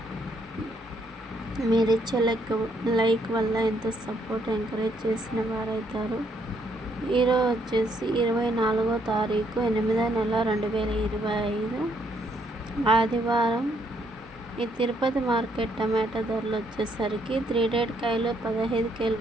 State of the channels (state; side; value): normal; both; correlation 0.72